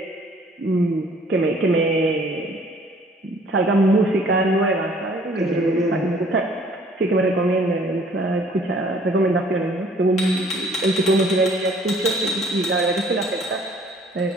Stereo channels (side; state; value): both; normal; correlation 0.57